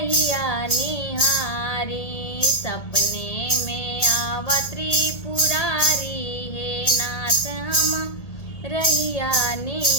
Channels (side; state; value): right; late; 1.8 ms